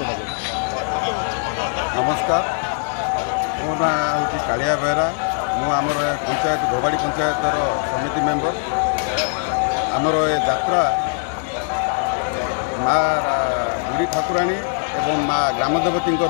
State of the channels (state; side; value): silent; right; digital silence